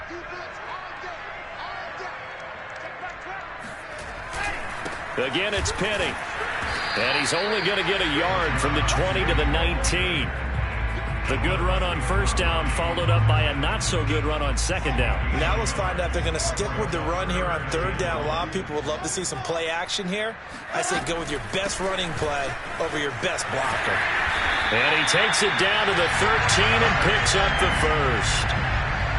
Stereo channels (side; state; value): both; identical; correlation 1.00